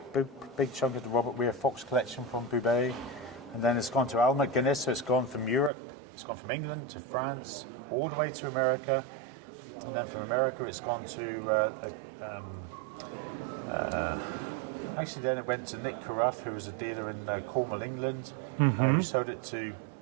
big chunk of the Robert Weir Fox collection from Boubet. And then it's gone to Al McGuinness, so it's gone from Europe, it's gone from England to France, all the way to America. And then from America it's gone to, actually then it went to Nick Carruth, who was a dealer in Cornwall, England, who sold it to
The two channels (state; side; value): drops out; left; at 5.7 s